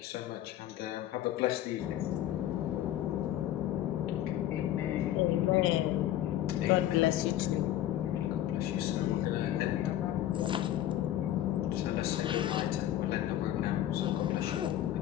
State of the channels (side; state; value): right; quieter; 12.7 dB